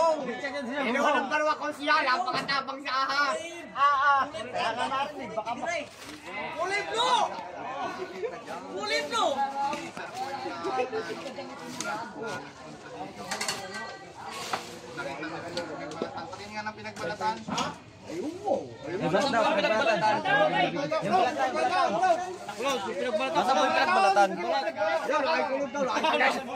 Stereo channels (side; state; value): both; identical; correlation 1.00